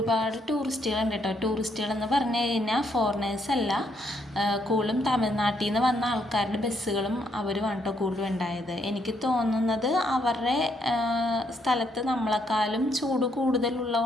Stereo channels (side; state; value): both; normal; correlation 0.74